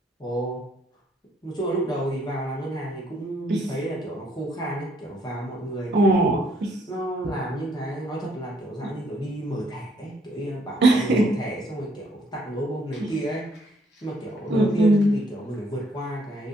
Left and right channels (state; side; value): normal; both; correlation 0.68